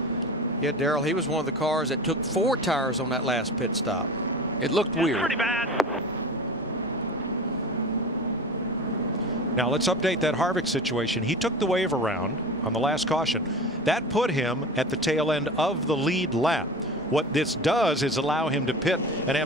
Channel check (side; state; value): both; normal; correlation 0.33